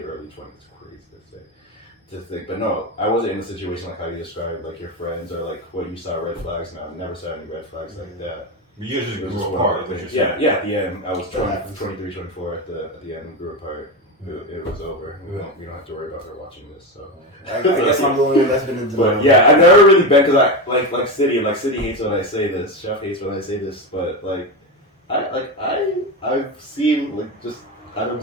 20s. It's crazy to think. But no, I wasn't in a situation like how you described, like your friends or like what you saw red flags. No, I never saw any red flags like that. You just It was grew just apart. one thing. Yeah, at the end, I was 23, 24 at the end, we grew apart. It was over. We don't have to worry about her watching this. So I guess I'm the only one that's been in denial. But yeah, I've never really been because I like City hates when I say this. Chef hates when I say this. But like I've seen I've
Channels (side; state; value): both; normal; correlation 0.16